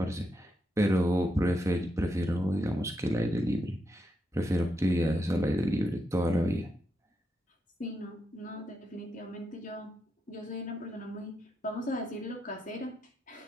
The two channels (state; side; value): normal; both; correlation 0.83